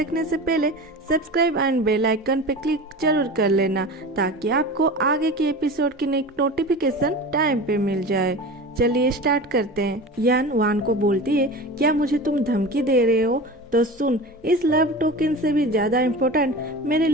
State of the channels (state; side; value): normal; both; correlation 0.32